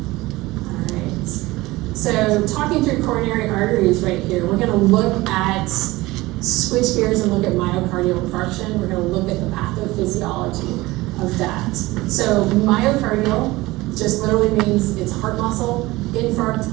So talking through coronary arteries right here, we're gonna look at, switch gears and look at myocardial infarction. We're gonna look at the pathophysiology of that. So myocardial just literally means it's heart muscle. Infarct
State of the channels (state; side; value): quieter; left; 19.8 dB